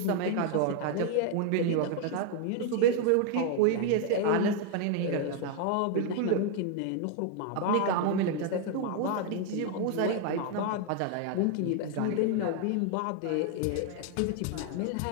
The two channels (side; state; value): both; different; correlation 0.00